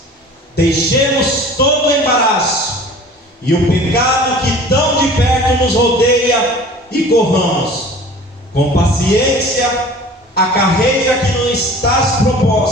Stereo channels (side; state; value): both; normal; correlation 0.44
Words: deixemos todo o embaraço e o pecado que tão de perto nos rodeia e corramos com paciência a carreira que nos está